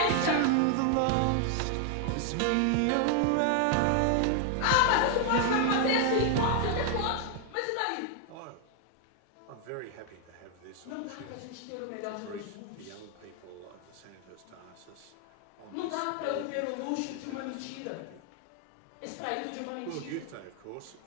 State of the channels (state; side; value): different; both; correlation 0.00